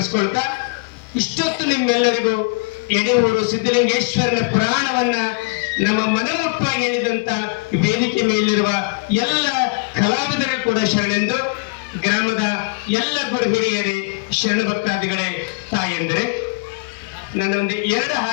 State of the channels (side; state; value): right; quieter; 29.4 dB